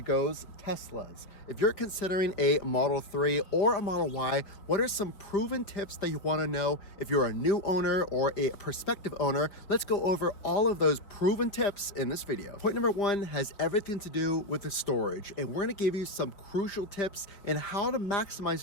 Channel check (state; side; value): late; right; 5.0 ms